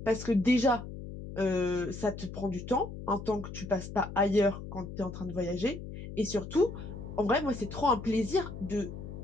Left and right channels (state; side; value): noise; left; hum, 10 dB below the sound